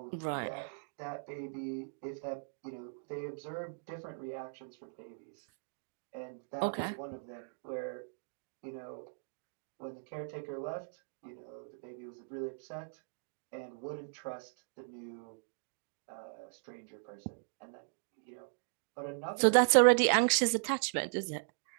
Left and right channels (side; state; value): left; silent; digital silence